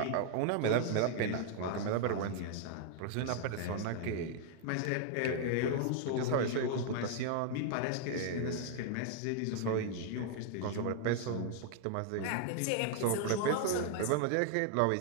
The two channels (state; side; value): different; both; correlation 0.00